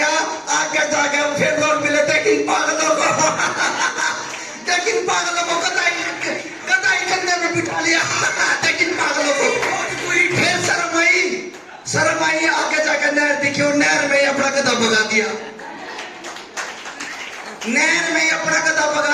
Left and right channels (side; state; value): both; identical; correlation 1.00